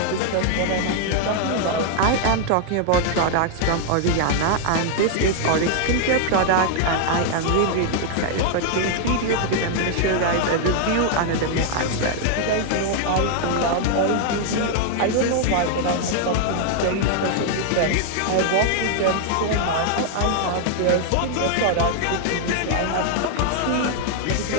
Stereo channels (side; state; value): both; different; correlation 0.00